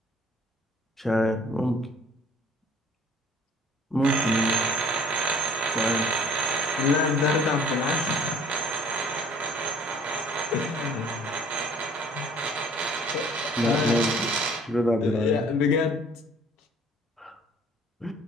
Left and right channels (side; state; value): both; normal; correlation 0.54